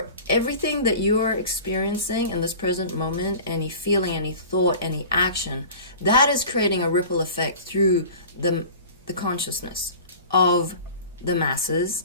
everything that you are experiencing in this present moment, any feeling, any thought, any action, that is creating a ripple effect through the consciousness of the masses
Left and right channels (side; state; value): both; inverted; correlation -0.39